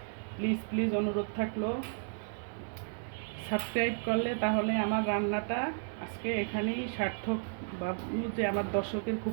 প্লিজ প্লিজ অনুরোধ থাকলো। সাবস্ক্রাইব করলে তাহলে আমার রান্নাটা আজকে এখানেই সার্থক। ভাববো যে আমার দর্শকের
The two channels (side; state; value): left; silent; 56 dB below the other